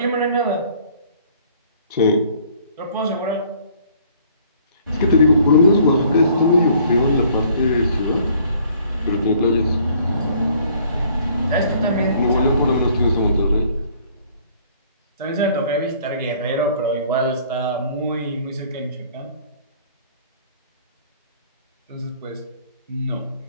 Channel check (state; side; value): inverted; both; correlation -0.58